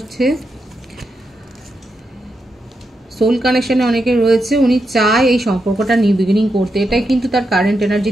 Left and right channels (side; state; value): both; normal; correlation 0.85